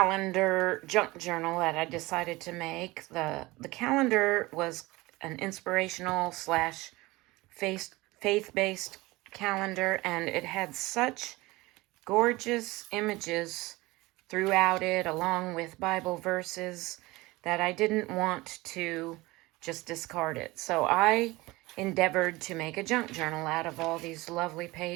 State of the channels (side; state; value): left; quieter; 21.1 dB